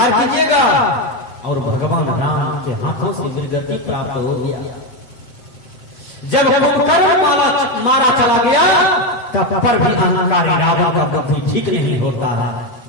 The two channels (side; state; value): right; late; 8.0 ms